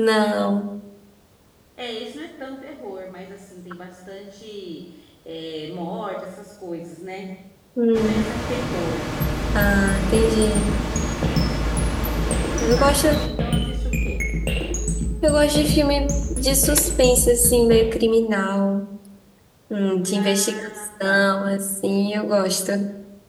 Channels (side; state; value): both; identical; correlation 1.00